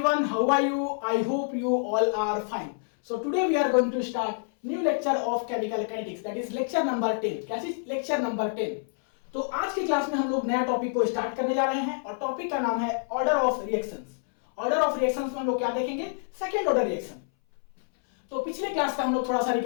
how are you? I hope you all are fine. So today we are going to start new lecture of chemical kinetics, that is lecture number 10. क्या चीज? Lecture number 10. तो आज की class में हम लोग नया topic को स्टार्ट करने जा रहे हैं और टॉपिक का नाम है order of reactions. Order of reactions में हम लोग क्या देखेंगे? Second order reaction. तो पिछले क्लास का हम लोग थोड़ा सा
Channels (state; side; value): silent; right; 60 dB below the other